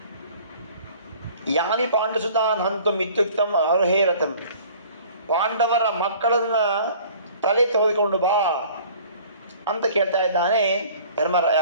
ಯಾನಿ ಪಾಂಡುಸುತಾನ್ ಹಂತು ಮಿತ್ಯುಕ್ತಂ ಅರ್ಹೇರತಂ. ಪಾಂಡವರ ಮಕ್ಕಳನ್ನ ತಲೆ ತೆಗೆದುಕೊಂಡು ಬಾ ಅಂತ ಕೇಳ್ತಾ ಇದ್ದಾನೆ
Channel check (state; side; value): inverted; both; correlation -0.50